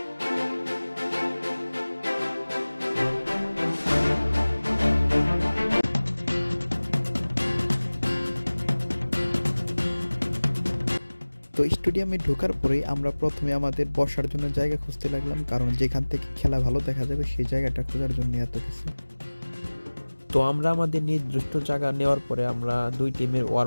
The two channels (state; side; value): inverted; both; correlation -1.00